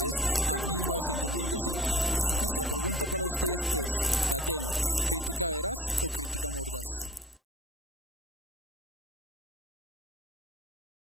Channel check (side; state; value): both; normal; correlation 0.49